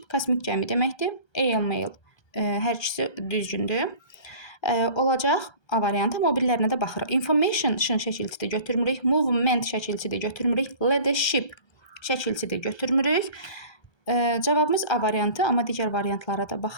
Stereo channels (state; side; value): late; right; 1.3 ms